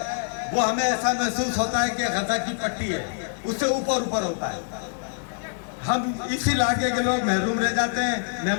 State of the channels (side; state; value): right; silent; digital silence